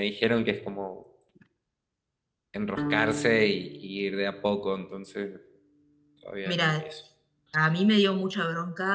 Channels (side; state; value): both; identical; correlation 1.00